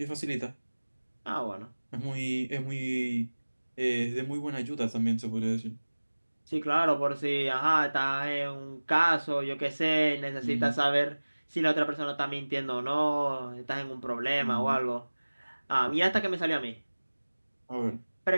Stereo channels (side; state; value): both; inverted; correlation -1.00